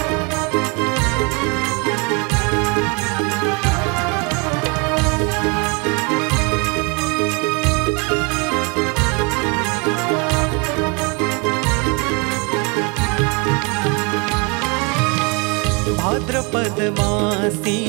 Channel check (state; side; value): quieter; left; 31.3 dB